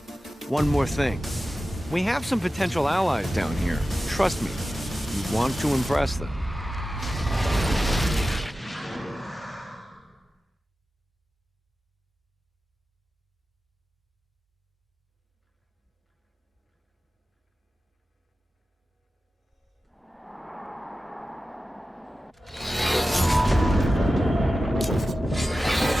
one more thing. We have some potential allies down here. Trust me, you want to impress them.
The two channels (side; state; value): both; normal; correlation 0.94